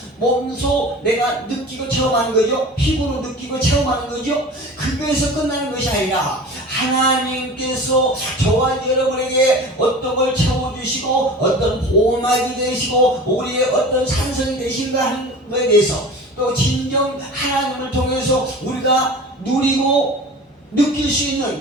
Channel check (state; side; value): normal; both; correlation 0.37